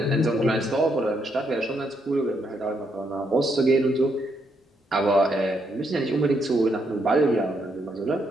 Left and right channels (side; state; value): both; normal; correlation 0.76